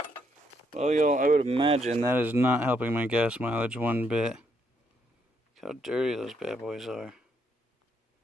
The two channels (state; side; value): normal; both; correlation 0.74